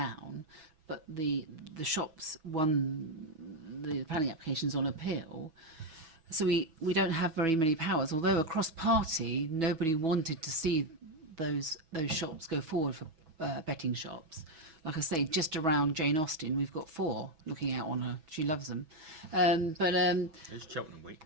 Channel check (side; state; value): left; late; 6.1 ms